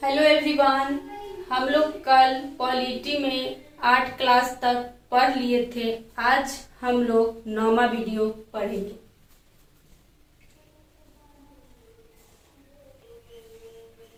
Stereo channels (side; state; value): both; identical; correlation 1.00